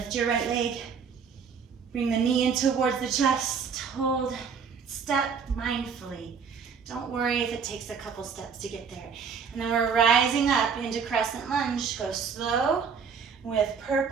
your right leg. Bring the knee in towards the chest. Hold. Step mindfully. Don't worry if it takes a couple steps to get there. And then we're rising up into crescent lunge. Go slow with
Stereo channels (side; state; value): left; quieter; 6.3 dB